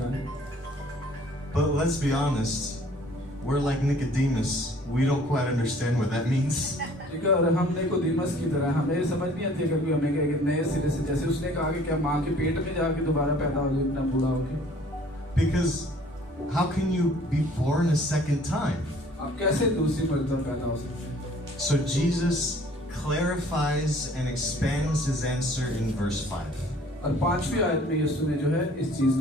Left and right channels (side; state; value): both; normal; correlation 0.54